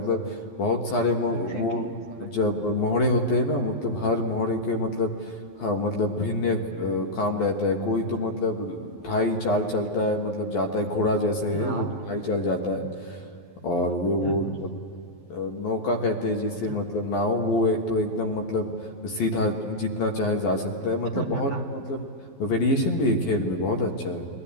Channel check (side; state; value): right; late; 12 ms